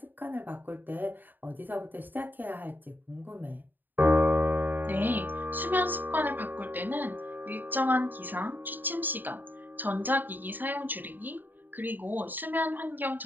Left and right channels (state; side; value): late; left; 0.090 ms